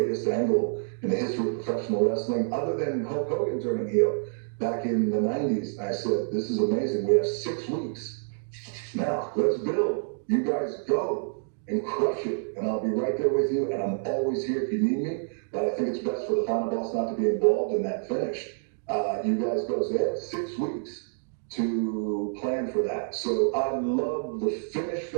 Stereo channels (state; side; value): silent; left; digital silence